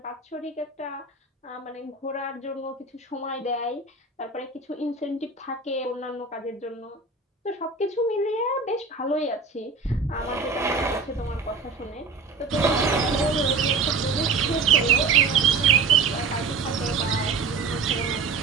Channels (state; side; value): quieter; left; 4.3 dB